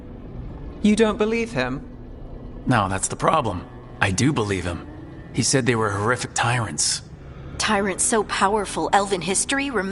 You don't believe him? No, that's the problem. I do believe him. He said they were horrific tyrants. Tyrants so powerful, elven history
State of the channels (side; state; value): both; identical; correlation 1.00